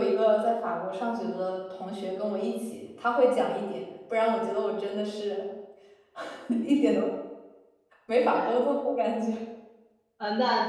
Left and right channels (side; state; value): both; identical; correlation 1.00